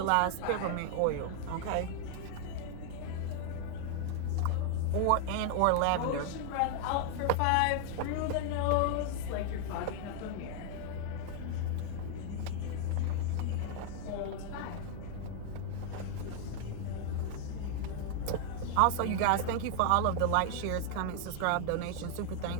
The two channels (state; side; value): different; both; correlation 0.00